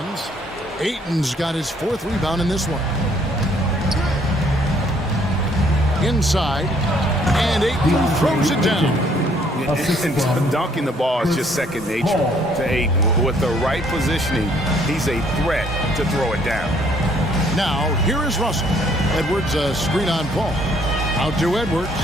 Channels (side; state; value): both; normal; correlation 0.64